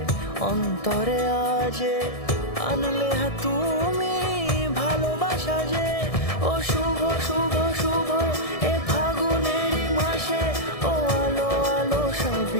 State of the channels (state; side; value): late; right; 1.7 ms